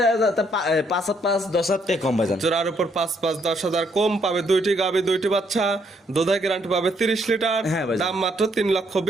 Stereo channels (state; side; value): normal; both; correlation 0.71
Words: 5,5-10,000 টাকা কম ভাইজান। জোড়ার উপর 5,5-10,000 কম পাবে, দুইটি গাভী দুইটি বাচ্চা, দুধের গ্যারান্টি পাবে 30 লিটার। হ্যাঁ ভাই দাম মাত্র